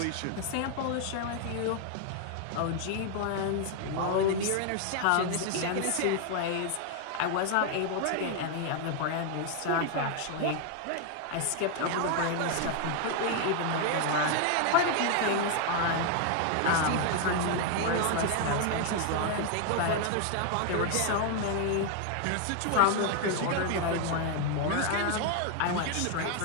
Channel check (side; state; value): both; different; correlation 0.00